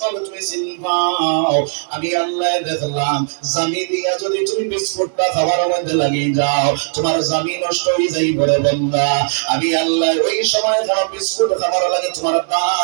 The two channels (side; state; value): left; silent; digital silence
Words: তুমি চিনবাও। আমি আল্লাহ দেখলাম জামি দিয়া যদি তুমি বিস্কুটটা খাবার মধ্যে লাগিয়ে যাও তোমার জামি নষ্ট হয়ে যাই বলে বান্দা। আমি আল্লাহ ওই সময় খারাপ বিস্কুট খাবার লাগে তোমার